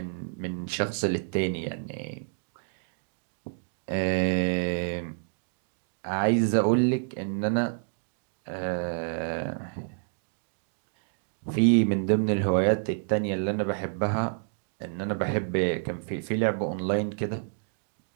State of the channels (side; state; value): left; silent; digital silence